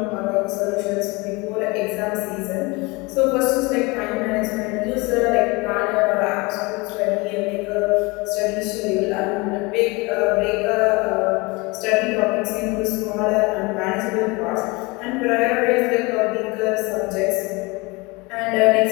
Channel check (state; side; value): quieter; right; 25.6 dB